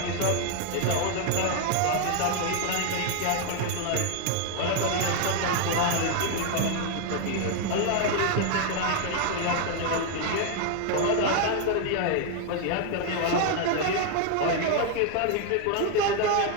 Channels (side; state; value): both; different; correlation 0.01